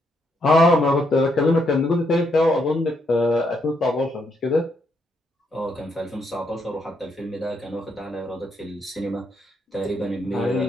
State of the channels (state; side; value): normal; both; correlation 0.76